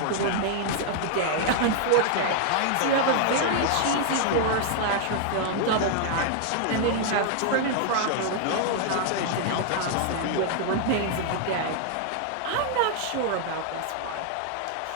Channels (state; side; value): different; both; correlation 0.00